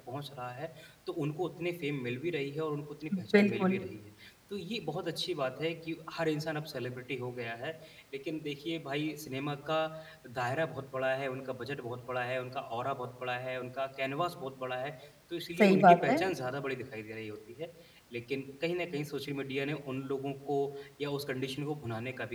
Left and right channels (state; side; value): identical; both; correlation 1.00